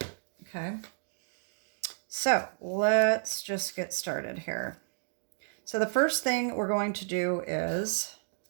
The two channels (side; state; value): left; silent; digital silence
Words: Okay. So let's just get started here. So the first thing we're going to do is